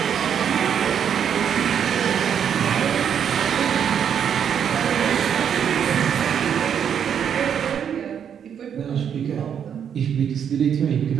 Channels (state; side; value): quieter; left; 8.3 dB